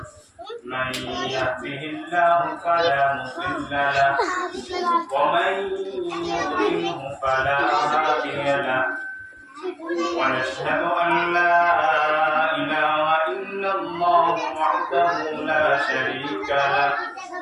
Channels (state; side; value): identical; both; correlation 1.00